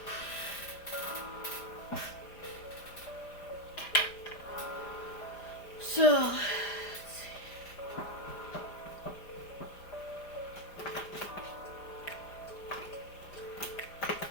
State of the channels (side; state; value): right; late; 5.0 ms